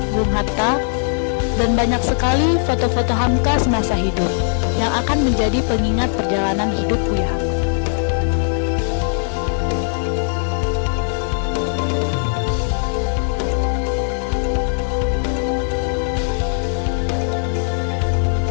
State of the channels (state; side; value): silent; right; 66 dB below the other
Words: Bung Hatta, dan banyak sekali foto-foto Hamka semasa hidup yang akan menjadi pengingat perjalanan hidup Buya Hamka.